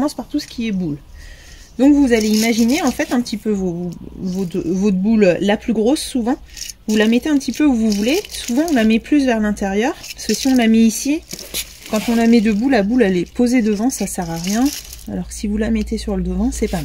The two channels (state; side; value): identical; both; correlation 1.00